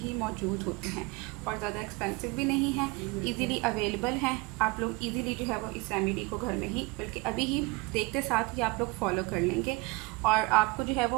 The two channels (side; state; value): left; quieter; 25.9 dB